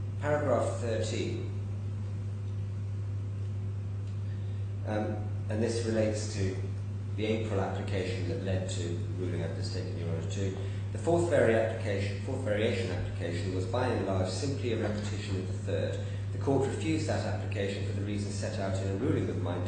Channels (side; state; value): both; identical; correlation 1.00